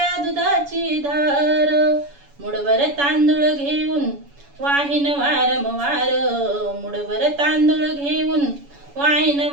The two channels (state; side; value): late; left; 7.1 ms